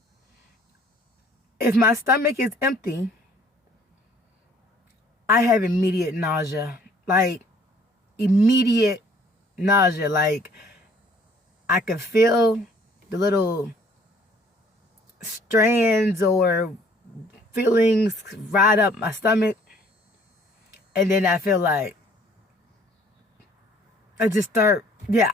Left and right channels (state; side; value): normal; both; correlation 0.58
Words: if my stomach is empty, I have immediate nausea. Immediate nausea. I can feel the little strands or feelings ride up my stomach, and then I feel like I just start, and